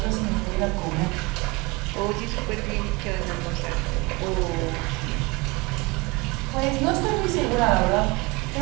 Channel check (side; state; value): left; quieter; 25.4 dB